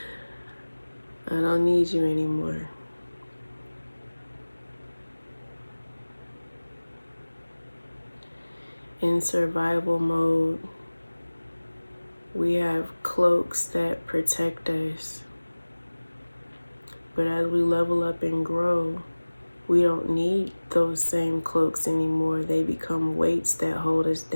I don't need you anymore. In survival mode, we have cloaks that protect us. But as we level up and grow, we don't need those same cloaks anymore. They become weights that hold us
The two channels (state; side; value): inverted; both; correlation -1.00